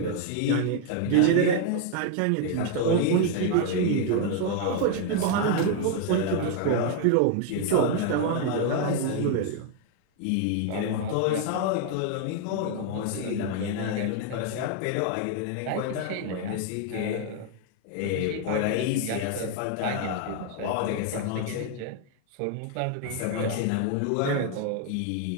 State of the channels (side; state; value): both; different; correlation 0.00